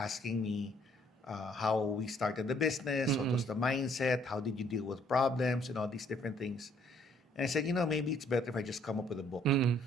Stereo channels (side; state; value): both; normal; correlation 0.64